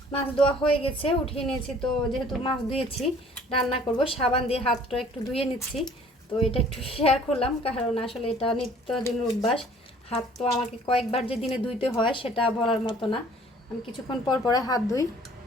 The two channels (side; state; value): both; normal; correlation 0.54